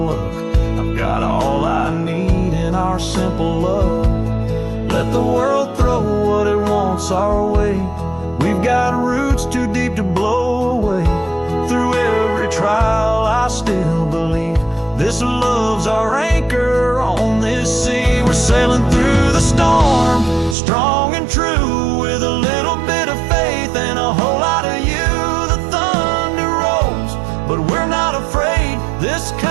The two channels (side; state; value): left; drops out; at 20.6 s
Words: our simple love. Let the world throw what it wants our way. We've got roots too deep to blow away. Through every trial I still believe this love's our anchor on this sea. We're sailing through the storm, strong and true, with a little bit of faith and a whole lot of you. The thunder rolls, but we're not afraid. This